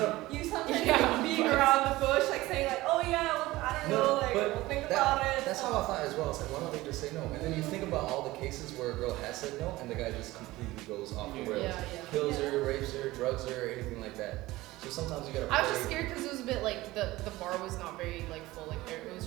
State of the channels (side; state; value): left; quieter; 18.4 dB